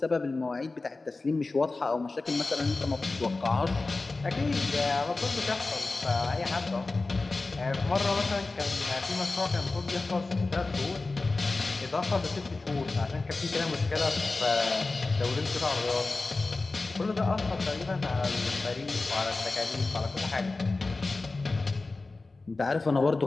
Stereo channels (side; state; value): right; quieter; 3.5 dB